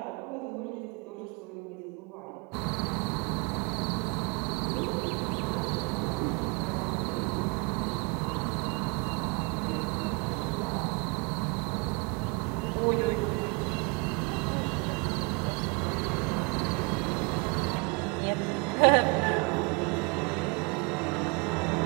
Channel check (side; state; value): left; quieter; 30.7 dB